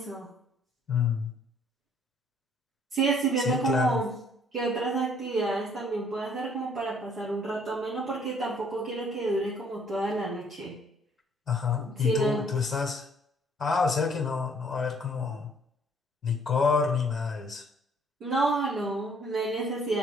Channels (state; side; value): normal; both; correlation 0.61